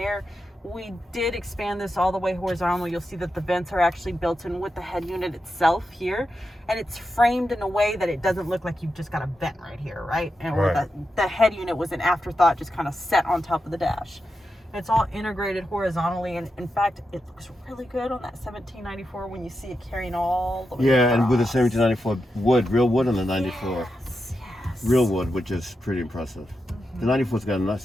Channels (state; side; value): normal; both; correlation 0.88